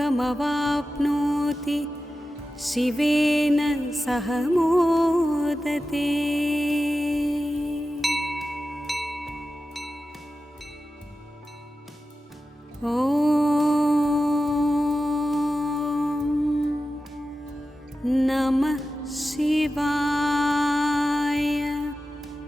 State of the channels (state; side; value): normal; both; correlation 0.93